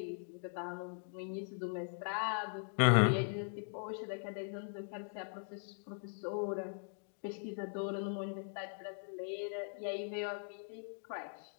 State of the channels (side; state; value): right; silent; digital silence